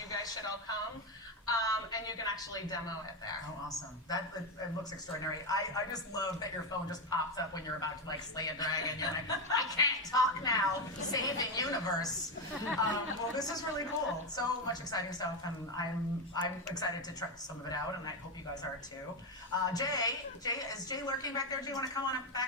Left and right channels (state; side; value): normal; both; correlation 0.10